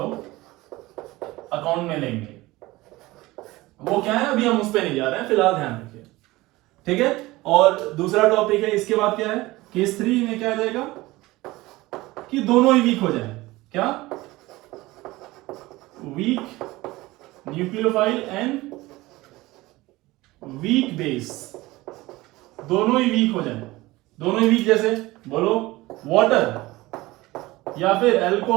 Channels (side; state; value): left; quieter; 19.6 dB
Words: अकाउंट में लेंगे। वो क्या है अभी हम उस पर नहीं जा रहे हैं, फिलहाल ध्यान रखिए, ठीक है। और दूसरा टॉपिक है इसके बाद क्या है, केस 3 में क्या आ जाएगा कि दोनों ही वीक हो जाए, क्या weak nucleophile and weak base, दोनों ही वीक हो जाए। दोनों ही वीक जैसे बोलो वाटर या फिर